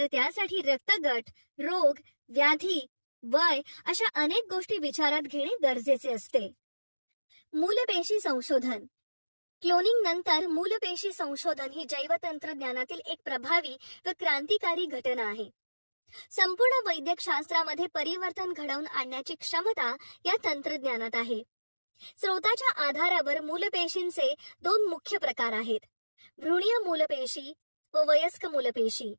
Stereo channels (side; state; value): both; inverted; correlation -1.00